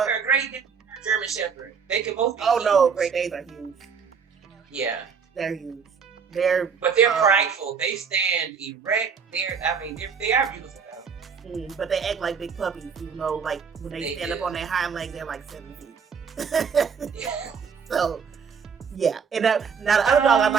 Great Dane or German Shepherd. They can both be huge. No, Great Danes are huge. Yeah. They're huge. But they're prideful. They stand erect. They are beautiful though. But they act like big puppies, even though like when they stand up on their hind legs, they're like 7 feet. So, yeah. And now the other dog I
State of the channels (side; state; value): left; quieter; 6.2 dB